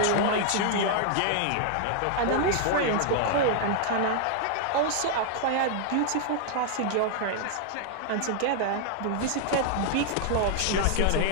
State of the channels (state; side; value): different; both; correlation 0.00